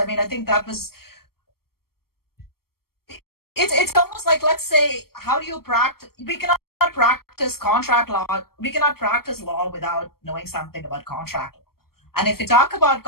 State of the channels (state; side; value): late; right; 0.94 ms